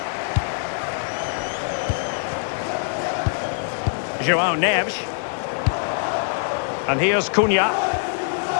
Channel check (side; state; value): right; silent; digital silence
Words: João Neves. And here's Cunha.